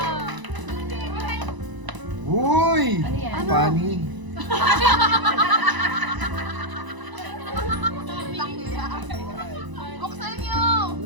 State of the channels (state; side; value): late; left; 1.0 ms